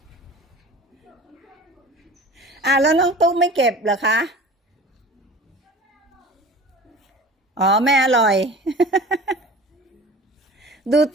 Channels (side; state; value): both; normal; correlation 0.39